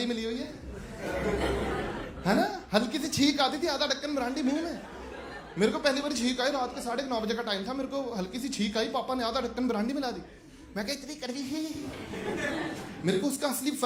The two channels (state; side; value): identical; both; correlation 1.00